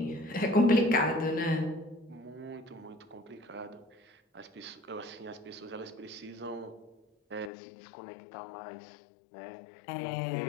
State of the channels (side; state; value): right; drops out; at 7.5 s